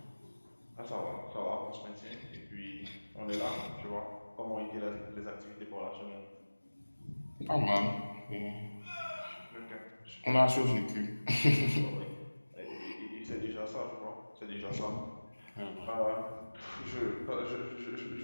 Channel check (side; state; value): both; inverted; correlation -1.00